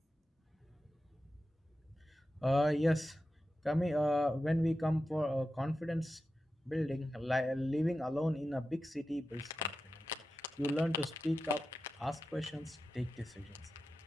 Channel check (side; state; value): both; normal; correlation 0.92